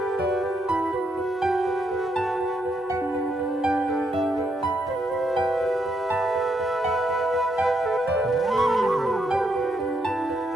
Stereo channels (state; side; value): normal; both; correlation 0.77